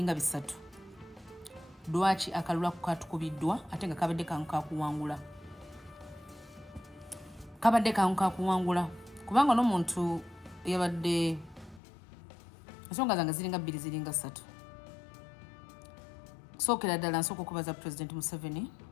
bisatu lwaki akalulu katukubiddwa ate nga kabadde kangu kakuwangula kubanga n'omuntu yabadde ensonga zange ziringa bbiri ziringa ssatu sookera ddala nsooka okubaza President Museveni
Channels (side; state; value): right; drops out; at 11.8 s